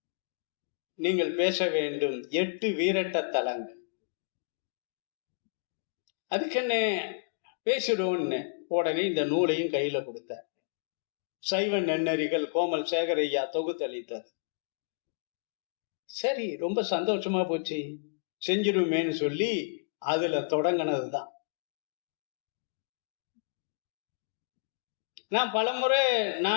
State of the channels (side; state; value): right; quieter; 37.2 dB